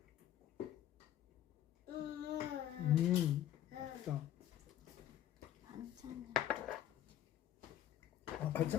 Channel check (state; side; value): quieter; right; 11.6 dB